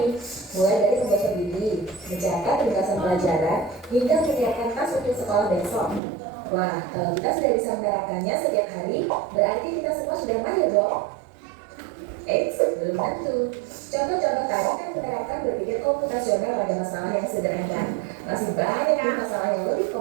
mulai dari membaca buku, mencatat tugasan pelajaran, hingga menyiapkan tas untuk sekolah besok. Wah, kalau kita sudah bisa menerapkannya setiap hari, berarti kita semua sudah mahir dong. Belum tentu. Contoh-contoh tadi kan menerapkan berpikir komputasional pada masalah yang sederhana. Masih banyak nih masalah yang lebih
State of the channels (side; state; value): left; drops out; at 6.0 s